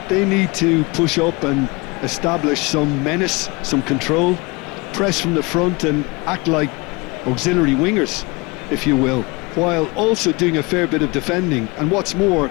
They need to push up and establish some menace, some control, press from the front and act like auxiliary wingers, if you will, while also doing a fair bit of defending. And what's more,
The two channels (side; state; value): right; quieter; 26.0 dB